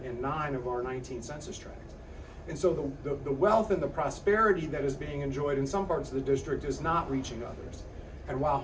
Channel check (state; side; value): identical; both; correlation 1.00